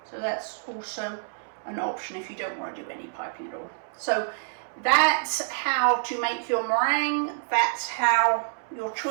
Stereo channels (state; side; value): silent; left; 60 dB below the other